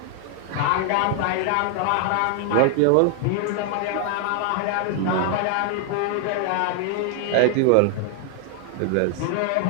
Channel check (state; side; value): different; both; correlation 0.00